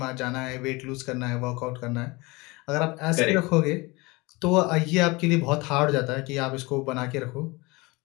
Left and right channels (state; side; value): quieter; right; 24.3 dB